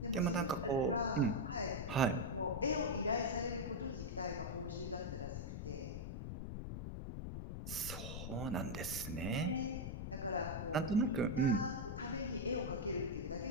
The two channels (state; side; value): noise; left; rumble, 5 dB below the sound